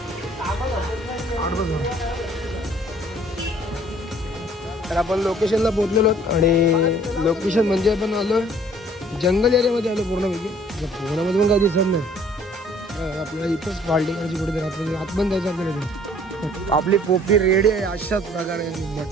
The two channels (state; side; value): normal; both; correlation 0.57